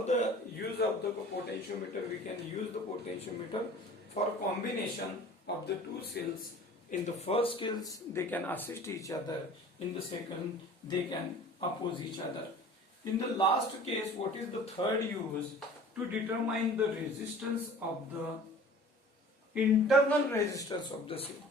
the use of the potentiometer? We can use the potentiometer for combination of the two cells. In the first case, they can assist each other. In the second, they can oppose each other. In the last case, what is the third use? To determine the resistance of the internal resistance of the cell.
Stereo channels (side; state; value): both; normal; correlation 0.45